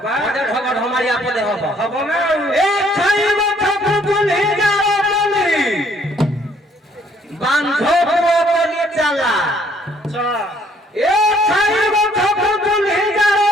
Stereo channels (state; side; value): normal; both; correlation 0.63